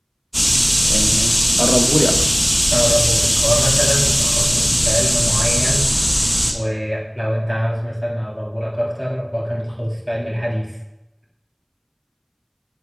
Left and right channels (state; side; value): identical; both; correlation 1.00